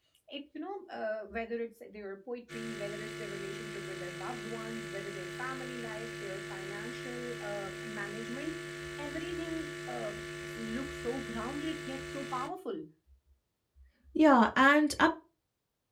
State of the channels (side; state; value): both; identical; correlation 1.00